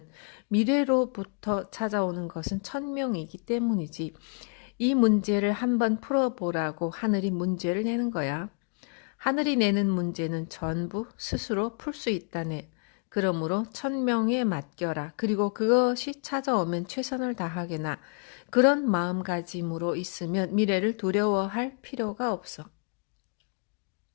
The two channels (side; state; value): right; quieter; 39.4 dB